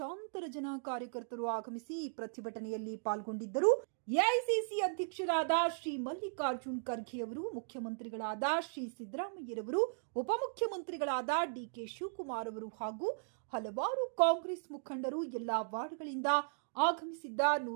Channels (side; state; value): left; silent; digital silence